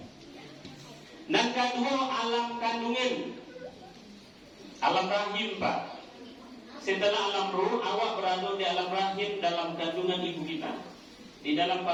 Dan kedua alam kandungan, alam rahim Pak. Setelah alam ruh, awak berada di alam rahim dalam kandungan ibu kita. Di dalam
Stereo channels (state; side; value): identical; both; correlation 1.00